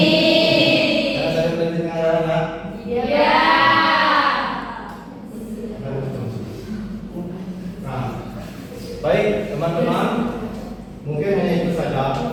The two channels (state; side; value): identical; both; correlation 1.00